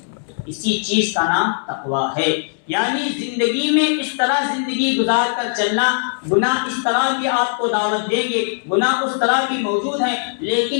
اسی چیز کا نام تقویٰ ہے، یعنی زندگی میں اس طرح زندگی گزار کر چلنا۔ گناہ اس طرح بھی آپ کو دعوت دیں گے، گناہ اس طرح بھی موجود ہیں،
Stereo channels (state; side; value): silent; right; 66 dB below the other